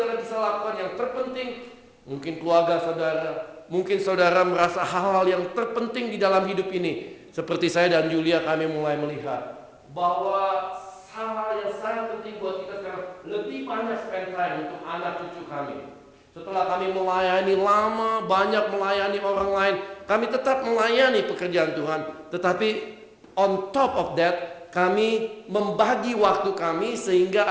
bisa lakukan yang terpenting, mungkin keluarga saudara, mungkin saudara merasa hal-hal yang terpenting di dalam hidup ini. Seperti saya dan Julia, kami mulai melihat bahwa hal-hal yang sangat penting buat kita sekarang, lebih banyak spend time untuk anak cucu kami. Setelah kami melayani lama, banyak melayani orang lain, kami tetap melayani pekerjaan Tuhan. Tetapi on top of that, kami membagi waktu kami sehingga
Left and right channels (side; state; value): both; identical; correlation 1.00